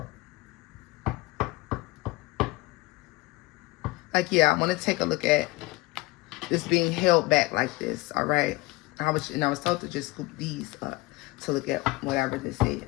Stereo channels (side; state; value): right; quieter; 20.7 dB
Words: Like, yeah, I want to take a look at this being held back like this. All right, I was told to just scoop these up to look at whatever this